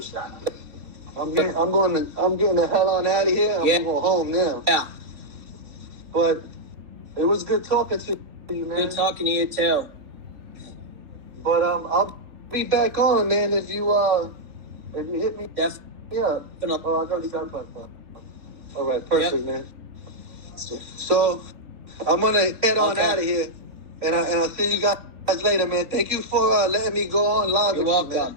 I'm getting the hell on out of here. I'm going home now. Yeah. But it was good talking to you, man. Good talking to you too. But I'll be back on, man. If you hit me, yeah. Oh, I got that. All right, perfect, man. So I'm gonna head on out of here, and I'll see you guys later, man. Thank you for letting me go on live. You're welcome. You, man.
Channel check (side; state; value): left; late; 3.7 ms